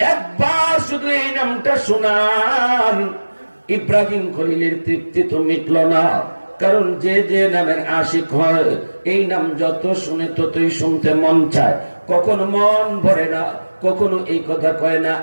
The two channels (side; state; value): both; inverted; correlation -1.00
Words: একবার শুধু এই নামটা শোনান, ইব্রাহিম খলিলের তৃপ্তি তো মিটল না। কারণ যে যে নামের আশিক হয়, এই নাম যত শুনে ততই শুনতে মন চায়। কখনো মন ভরে না, কখনো এই কথা কয় না,